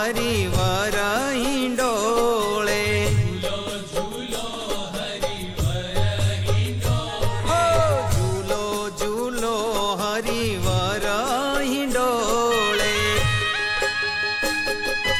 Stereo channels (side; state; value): both; identical; correlation 1.00